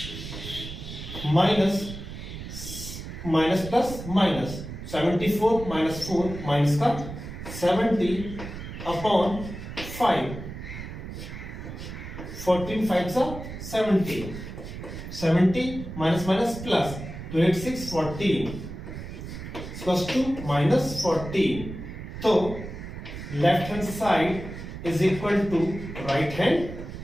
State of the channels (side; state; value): right; noise; rumble, 10 dB below the sound